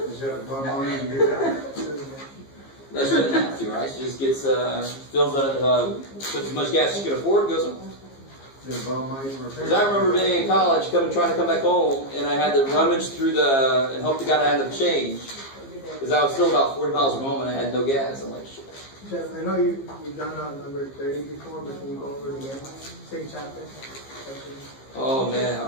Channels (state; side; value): late; right; 15 ms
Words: you have to bum on it and get down? No, she doesn't have to, right? She just gets, fills it, puts as much gas as she can afford, goes home. There's bum money for Because I remember being in college, trying to come back home, and I had to rummage through and hope to God I had enough change. Because I was still about 40 miles from home and I had no gas. I'm like, shit. Jeff, I know you've done number 30 before, but can you go over it again? Same chapter. Oh man,